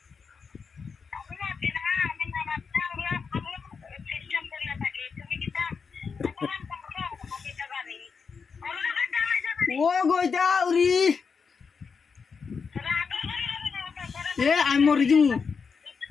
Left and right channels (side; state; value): right; quieter; 5.6 dB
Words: ও গো এটা আউরি এ আমি মরে দিমু